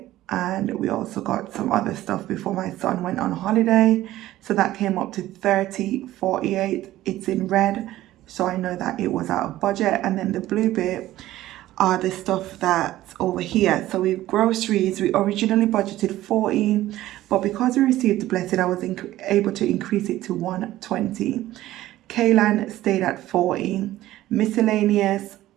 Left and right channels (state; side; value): quieter; left; 15.1 dB